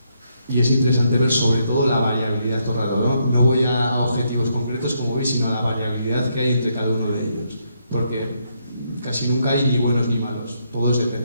Y es interesante ver sobre todo la variabilidad todo el rato, ¿no? No voy a objetivos concretos, como veis, sino a la variabilidad que hay entre cada uno de ellos. Porque casi nunca hay ni buenos ni malos, todos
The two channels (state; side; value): inverted; both; correlation -0.77